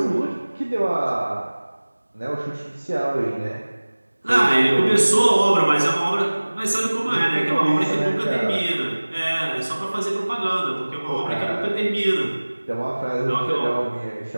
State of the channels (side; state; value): both; inverted; correlation -1.00